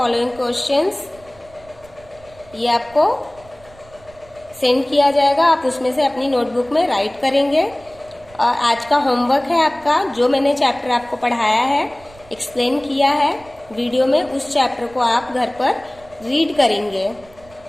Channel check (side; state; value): right; noise; rumble, 25 dB below the sound